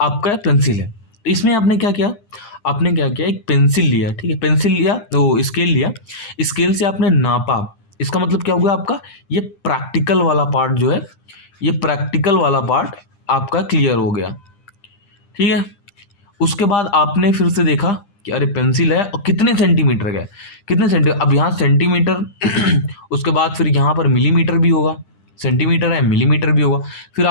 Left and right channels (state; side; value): late; right; 9.9 ms